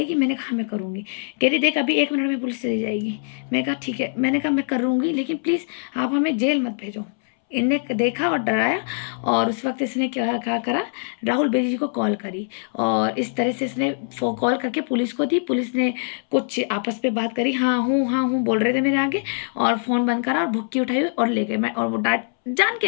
मैंने कहा मैं करूँगी। कह रही देख अभी 1 मिनट में पुलिस चली जाएगी। मैं कहा ठीक है, मैंने कहा मैं करूँगी लेकिन प्लीज़ आप हमें जेल मत भेजो। इनने देखा और डराया और उस वक्त इसने क्या करा, राहुल बेरी जी को कॉल करी और इस तरह से इसने कॉल करके पुलिस को दी। पुलिस ने कुछ आपस में बात करी, हाँ हूँ बोल रहे थे मेरे आगे, और फ़ोन बंद करा और भुक्की उठाई और ले गए। मैं और वो डांट जान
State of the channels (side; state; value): right; silent; 62 dB below the other